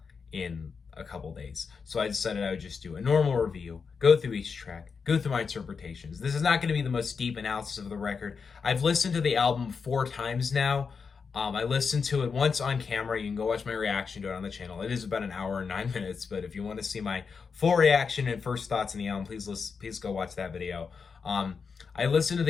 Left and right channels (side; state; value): right; quieter; 5.5 dB